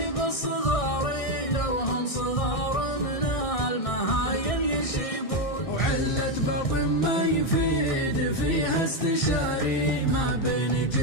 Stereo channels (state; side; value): late; right; 1.6 ms